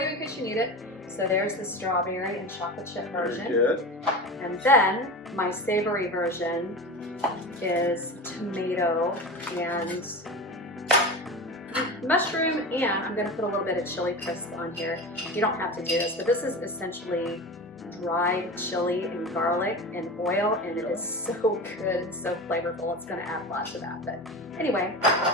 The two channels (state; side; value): normal; both; correlation 0.28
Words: in case you need it. So there's the strawberry and chocolate chip version. Very good. And then my savory version is tomato and mushroom, and I'm gonna put a little bit of chili crisp on here. You don't have to do this, but this is essentially dried chili and garlic and oil, and it is so good and so flavorful. It's gonna add lots of that. But anyway,